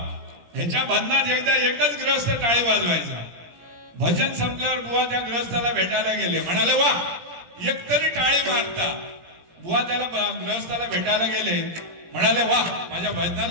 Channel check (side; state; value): left; late; 17 ms